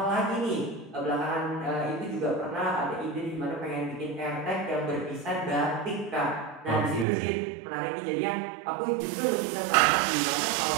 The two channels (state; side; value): drops out; left; at 7.1 s